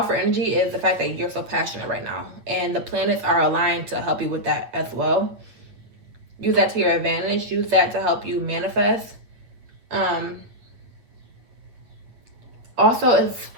energy is the fact that you're so passionate right now, and the planets are aligned to help you with that as well. Use that to your advantage. Use that to help you manifest. Also,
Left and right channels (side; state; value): left; late; 8.8 ms